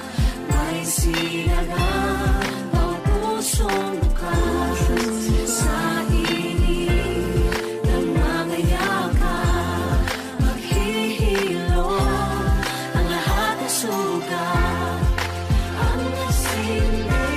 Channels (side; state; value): both; identical; correlation 1.00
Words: May sinagang bawat pusong bukas. Sa init ng mga yakap, maghihilom ang lahat ng sugat. Ang nasinitong